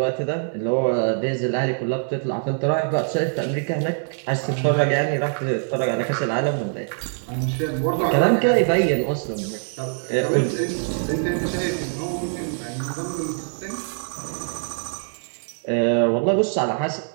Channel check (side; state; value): left; silent; 63 dB below the other